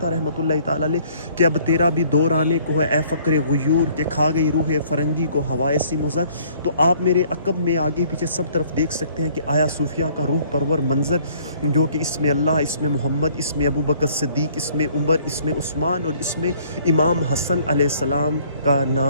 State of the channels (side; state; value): both; inverted; correlation -0.59